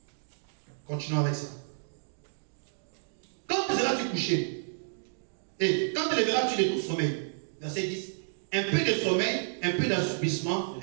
Continuons avec ça. Quand seras-tu couché? Et quand te lèveras-tu de ton sommeil? Verset 10. Un peu de sommeil, un peu d'assoupissement,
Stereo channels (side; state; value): left; silent; digital silence